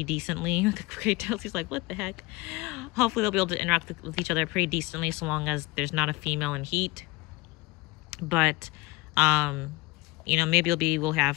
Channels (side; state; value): right; quieter; 22.6 dB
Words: decently. He's like, what the heck? Hopefully, they'll be able to interact with each other pretty decently so long as there's not a female in heat. But, you know, maybe we'll